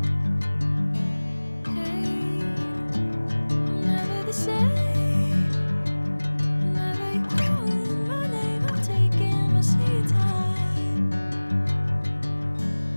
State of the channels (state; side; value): inverted; both; correlation -1.00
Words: Hey, I'm never the same. Whenever you're calling my name, I'm taking my sweet time.